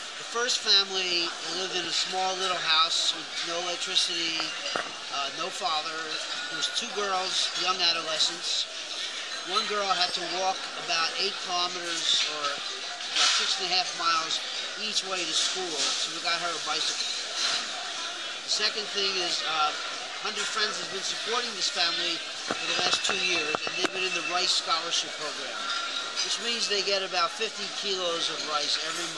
The first family lived in a small little house with no electricity, no father. There was two girls, young adolescents. One girl had to walk about 8 kilometers or about 6.5 miles each way to school, so we got her a bicycle. The second thing is 100 Friends has been supporting this family for the last 2 years, and they've been in the rice scholarship program, which means they get about 50 kilos of rice every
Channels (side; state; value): both; identical; correlation 1.00